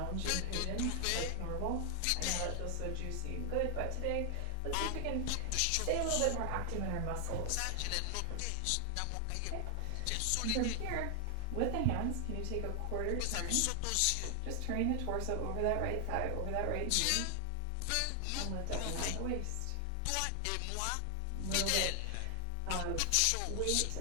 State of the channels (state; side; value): different; both; correlation 0.00